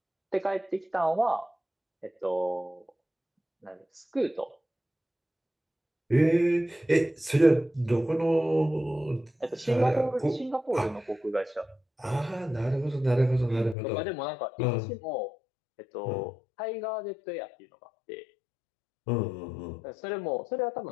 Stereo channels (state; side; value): drops out; right; at 13.8 s